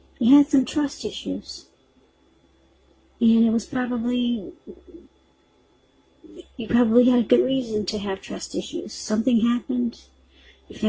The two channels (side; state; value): both; identical; correlation 1.00